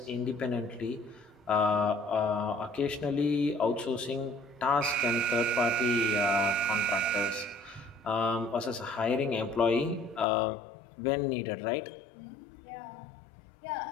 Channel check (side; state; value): right; drops out; at 10.2 s